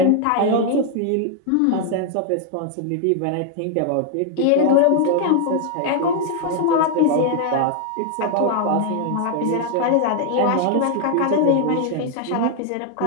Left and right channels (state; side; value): different; both; correlation 0.00